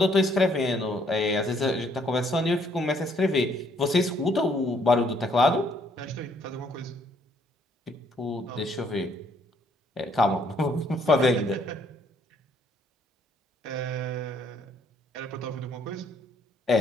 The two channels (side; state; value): both; normal; correlation 0.67